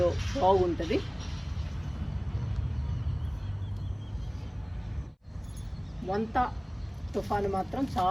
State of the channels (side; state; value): both; identical; correlation 1.00